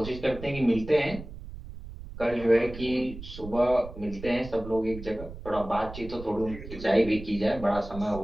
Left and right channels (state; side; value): noise; right; rumble, 13 dB below the sound